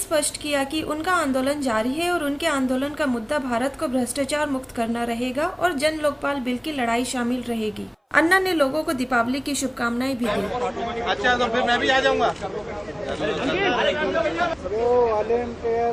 किया कि उनका आंदोलन जारी है और उनके आंदोलन का मुद्दा भारत को भ्रष्टाचार मुक्त करना रहेगा और जन लोकपाल बिल की लड़ाई शामिल रहेगी। अन्ना ने लोगों को दीपावली की शुभकामनाएं भी दी। अच्छा, तो फिर मैं भी आ जाऊंगा। जो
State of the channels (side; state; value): both; identical; correlation 1.00